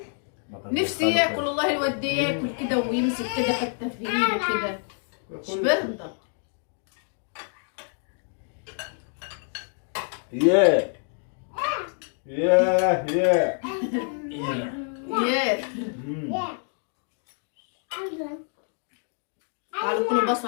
نفسي ياكل والله. الواد ده ياكل كده ويمسك كده حته في ايده كده. مش برضه. ياه ياه ياه ياه. تعالوا كلوا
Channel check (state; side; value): silent; right; 55 dB below the other